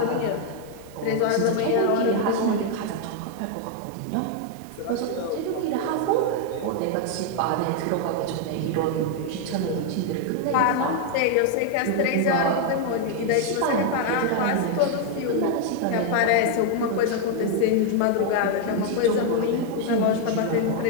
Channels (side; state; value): both; different; correlation 0.00